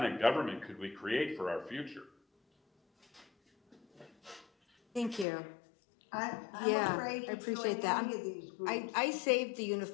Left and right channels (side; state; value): right; drops out; at 5.2 s